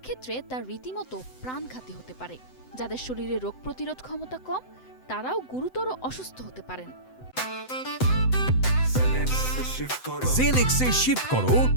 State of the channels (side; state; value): right; late; 7.9 ms